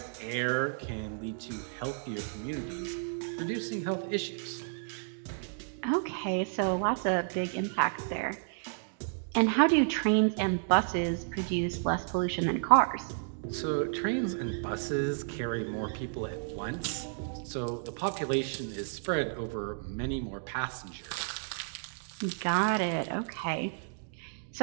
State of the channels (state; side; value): silent; left; digital silence